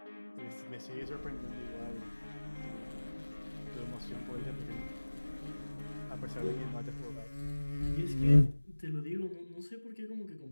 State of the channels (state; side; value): inverted; both; correlation -1.00